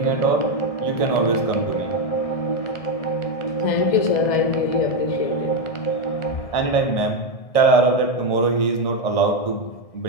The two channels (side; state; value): right; late; 1.6 ms